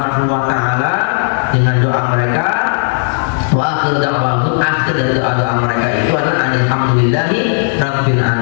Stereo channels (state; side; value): silent; right; digital silence